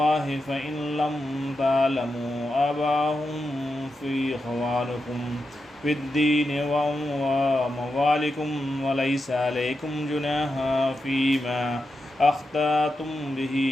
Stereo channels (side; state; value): both; normal; correlation 0.88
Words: فإن لم تعلموا آباءهم فإخوانكم في الدين وموالكم وليس عليكم جناح فيما أخطأتم به